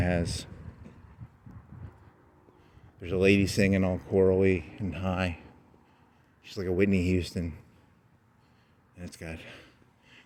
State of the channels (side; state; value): both; identical; correlation 1.00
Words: there's a lady singing all chorally and high. She's like a Whitney Houston. And then